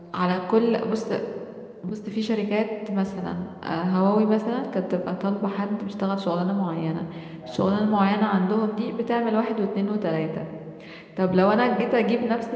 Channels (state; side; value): identical; both; correlation 1.00